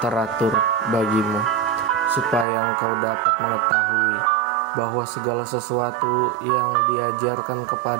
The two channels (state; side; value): drops out; left; at 2.5 s